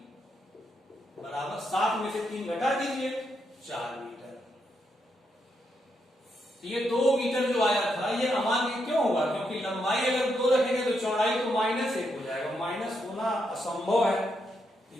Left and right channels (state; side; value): normal; both; correlation 0.80